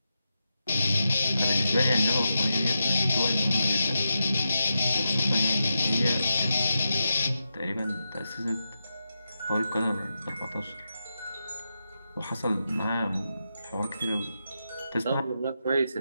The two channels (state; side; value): inverted; both; correlation -0.88